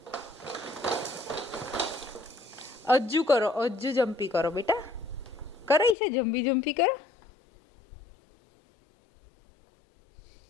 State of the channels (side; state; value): right; drops out; at 6.0 s